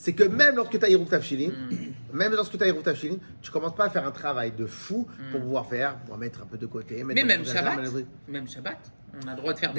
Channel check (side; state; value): both; inverted; correlation -1.00